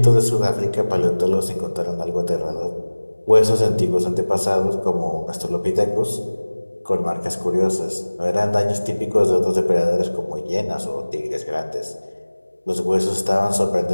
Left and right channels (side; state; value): both; inverted; correlation -1.00